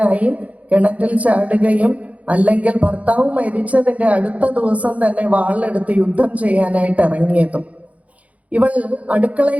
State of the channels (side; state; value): left; late; 0.067 ms